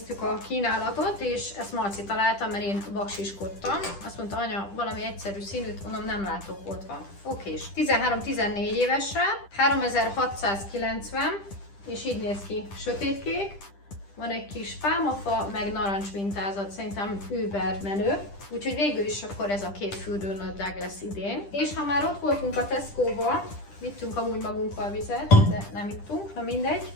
a kínálatot, és ezt Marci találta, mert én baksiskodtam. Azt mondta, anya, valami egyszerű színűt, mondom, nem látok, ott van. Okés. 13-14 évesre, 3690, és így néz ki, sötétkék. Van egy kis pálmafa, meg narancs mintázat, szerintem über menő. Úgyhogy végül is akkor ez a 2 fürdőnadrág lesz idén. És ha már ott voltunk a Tesco-ba, vittünk amúgy magunkkal vizet, de nem ittunk, na mindegy.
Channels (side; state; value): right; late; 10 ms